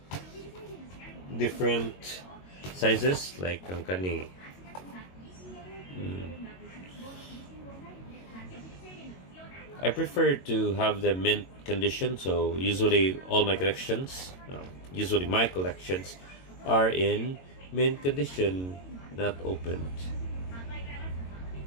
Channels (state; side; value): late; right; 22 ms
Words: different sizes, like ang kani. I prefer to have the mint condition, so usually my collections are in mint condition, not opened.